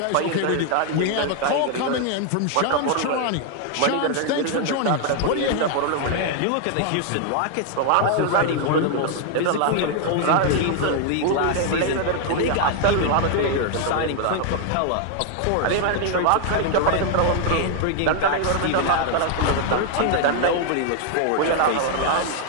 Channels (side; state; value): both; different; correlation 0.00